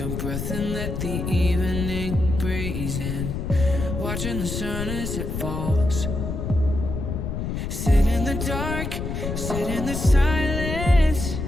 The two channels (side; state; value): left; noise; rumble, 4 dB below the sound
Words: breath and let the evening breeze in, watching the sun as it falls. Sit in the dark, sit in the silence.